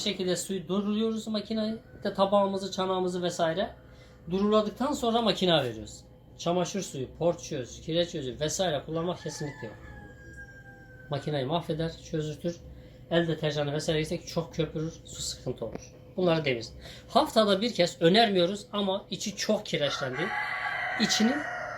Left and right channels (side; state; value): both; identical; correlation 1.00